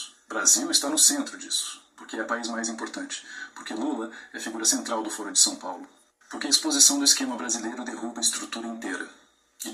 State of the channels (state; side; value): identical; both; correlation 1.00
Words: O Brasil está no centro disso, porque é o país mais importante, porque Lula é figura central do Foro de São Paulo, porque a exposição do esquema brasileiro derruba a estrutura inteira. E